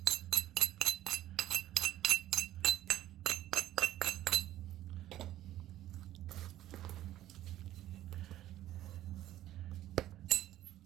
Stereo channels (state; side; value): quieter; left; 13.4 dB